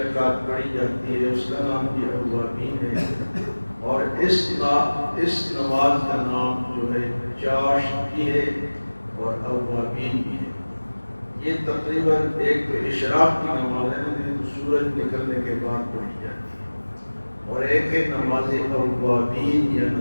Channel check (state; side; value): inverted; both; correlation -1.00